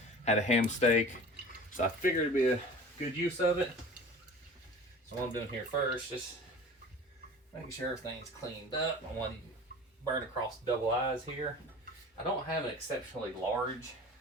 a ham steak, so I figured it'd be a good use of it. So what I'm doing here first, just making sure everything's cleaned up. I want to burn across the double eyes here. I don't have an exceptionally large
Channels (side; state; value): both; normal; correlation 0.39